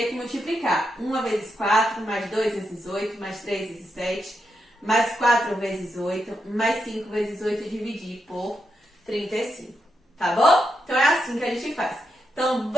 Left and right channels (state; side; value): normal; both; correlation 0.84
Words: que multiplicar 1 vezes 4, mais 2 vezes 8, mais 3 vezes 7, mais 4 vezes 8, mais 5 vezes 8 e dividir por 35. Tá bom? Então, é assim que a gente faz. Então,